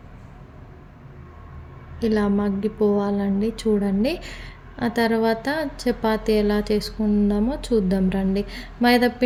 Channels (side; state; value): both; identical; correlation 1.00